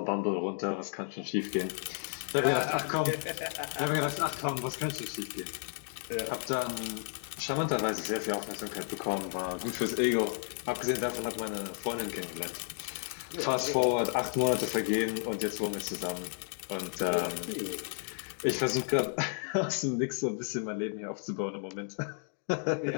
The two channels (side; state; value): right; silent; 56 dB below the other